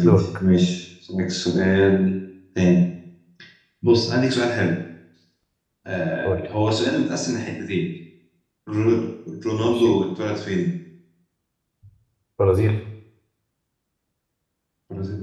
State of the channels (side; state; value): both; identical; correlation 1.00